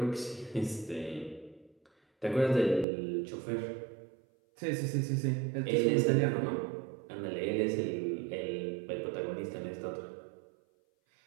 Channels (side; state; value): left; drops out; at 2.9 s